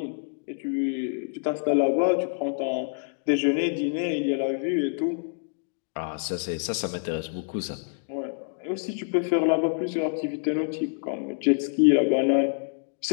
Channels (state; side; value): silent; right; digital silence